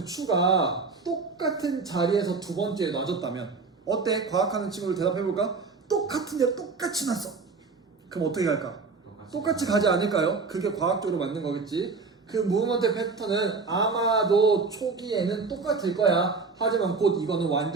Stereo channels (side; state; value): left; quieter; 4.4 dB